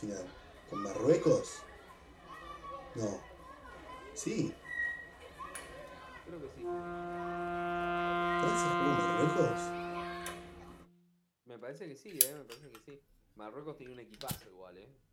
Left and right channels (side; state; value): both; identical; correlation 1.00